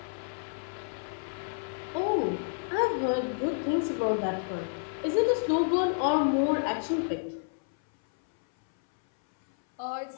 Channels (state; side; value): silent; right; 58 dB below the other